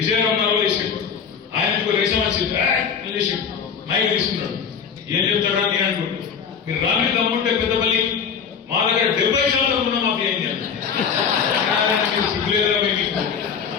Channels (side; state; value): right; quieter; 6.9 dB